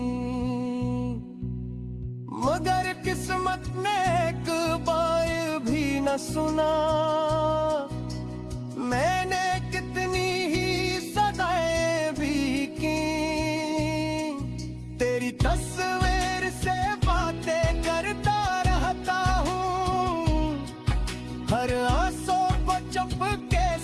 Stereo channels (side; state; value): both; identical; correlation 1.00